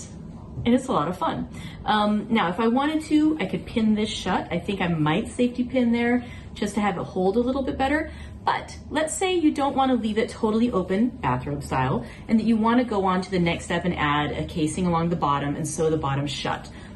it's a lot of fun. Now, if I wanted to, I could pin this shut. I think I might safety pin there just to have it hold a little bit better. But let's say you don't want to leave it totally open, bathrobe style, and that you want to go on to the next step and add a casing along the bottom and sew the bottom shut.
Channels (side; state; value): both; identical; correlation 1.00